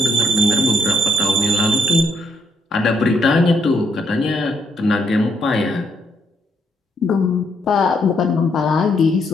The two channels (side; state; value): both; normal; correlation 0.74